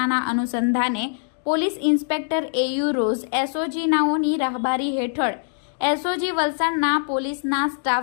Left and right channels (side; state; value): right; silent; digital silence